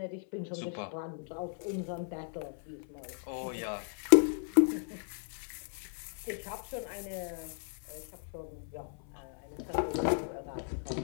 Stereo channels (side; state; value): right; silent; 54 dB below the other